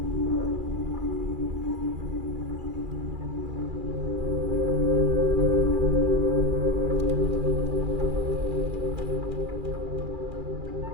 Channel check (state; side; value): late; left; 2.4 ms